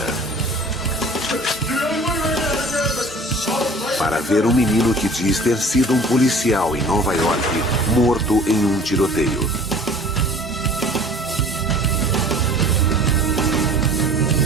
para ver um menino que diz ter sido um policial em Nova York morto em um tiroteio.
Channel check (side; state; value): both; normal; correlation 0.47